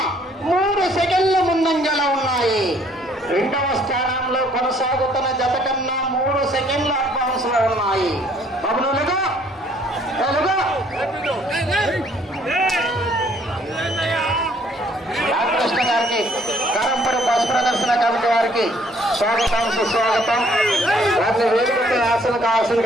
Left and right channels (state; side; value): normal; both; correlation 0.62